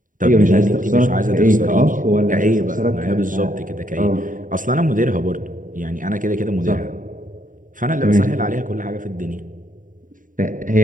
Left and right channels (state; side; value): late; left; 0.39 ms